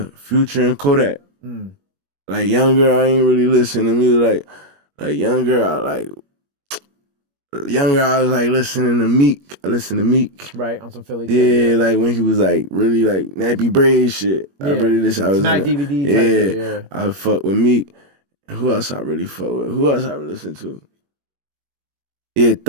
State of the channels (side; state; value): left; late; 21 ms